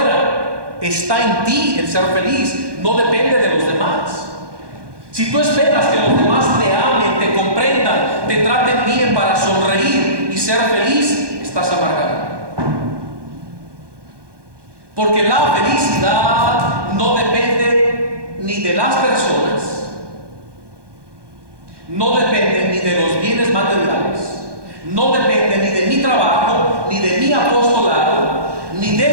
Está en ti el ser feliz, no depende de los demás. Si tú esperas que los demás te amen, te comprendan, te traten bien para sonreír y ser feliz, estás amargado. Porque la felicidad no depende ni de las personas, no depende ni de los bienes materiales, no depende ni de mi trabajo, ni de mi apostolado, ni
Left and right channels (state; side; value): late; left; 1.2 ms